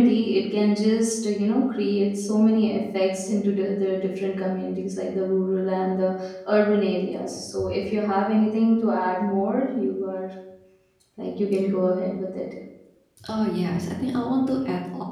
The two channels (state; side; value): identical; both; correlation 1.00